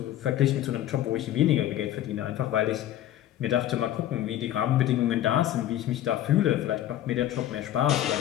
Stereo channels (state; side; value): quieter; right; 12.6 dB